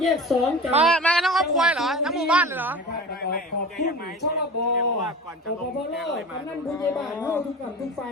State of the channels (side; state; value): both; normal; correlation 0.35